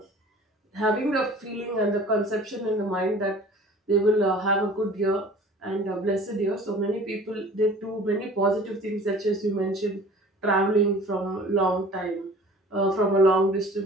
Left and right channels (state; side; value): normal; both; correlation 0.46